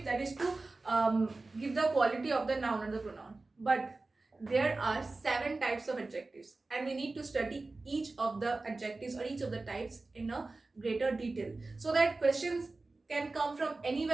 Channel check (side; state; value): left; quieter; 3.4 dB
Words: that is to give the quality of the noun or the pronoun. But there are 7 types of adjectives, and we need to study each of the adjectives or each of the types in a greater detail, so that questions can come from